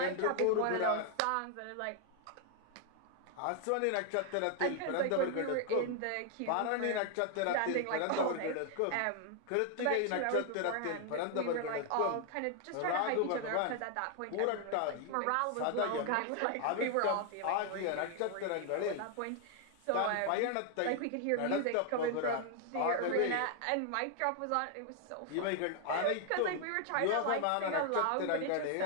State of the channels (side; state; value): both; different; correlation 0.00